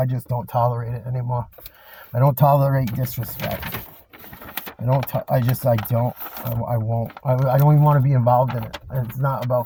just don't tolerate it anymore. I don't tolerate disrespect. I won't. I don't even want to be involved in it. It's not about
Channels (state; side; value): identical; both; correlation 1.00